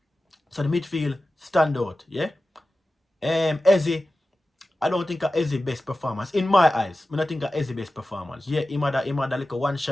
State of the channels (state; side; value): normal; both; correlation 0.94